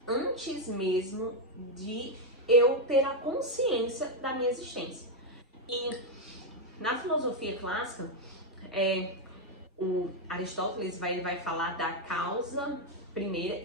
antes mesmo de eu ter a consciência da minha existência. E na filosofia clássica, o Aristóteles vai falar da causa primeira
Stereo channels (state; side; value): normal; both; correlation 0.03